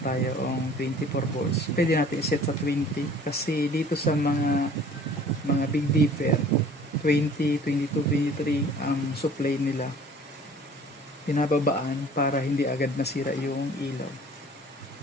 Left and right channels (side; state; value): both; normal; correlation 0.50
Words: ang 24 volts. Pwede natin iset sa 20 kasi dito sa mga big dipper 20, 22, 23 ang supply nila. Pinababaan para hindi agad nasira yung ilaw.